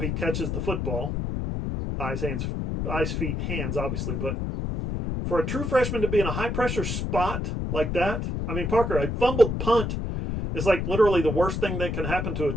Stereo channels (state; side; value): noise; left; rumble, 2 dB below the sound